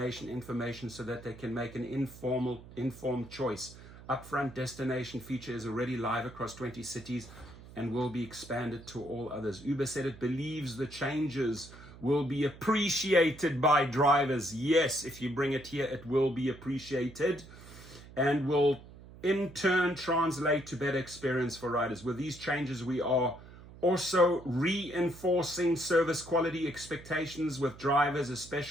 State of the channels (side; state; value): right; noise; hum, 18 dB below the sound